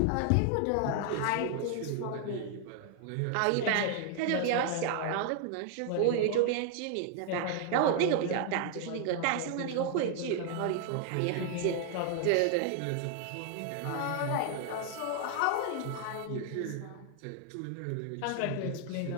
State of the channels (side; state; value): both; different; correlation 0.00